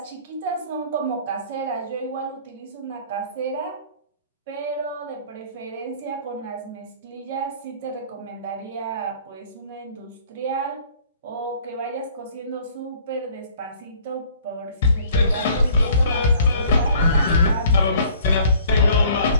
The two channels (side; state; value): both; inverted; correlation -0.55